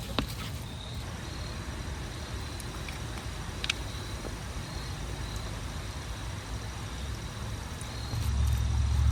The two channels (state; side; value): identical; both; correlation 1.00